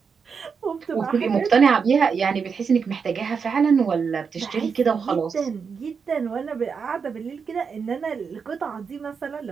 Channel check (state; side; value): quieter; left; 5.9 dB